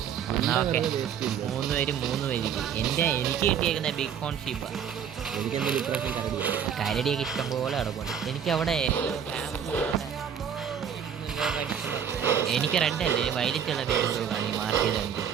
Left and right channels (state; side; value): quieter; left; 8.1 dB